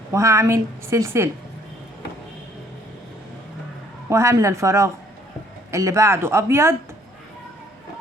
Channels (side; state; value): both; normal; correlation 0.61